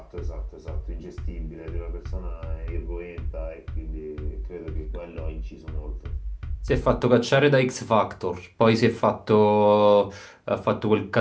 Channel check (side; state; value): both; identical; correlation 1.00